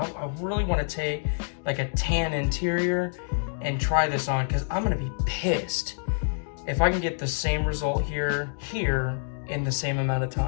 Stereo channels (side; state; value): right; silent; digital silence